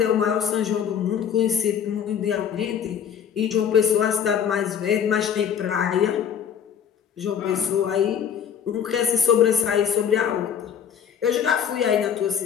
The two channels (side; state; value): right; quieter; 8.3 dB